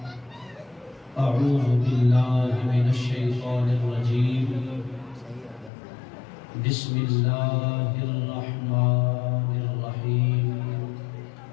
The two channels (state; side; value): drops out; right; at 5.7 s